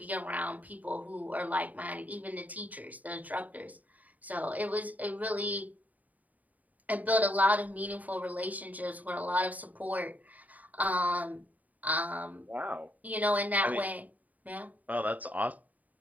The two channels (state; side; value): late; left; 0.075 ms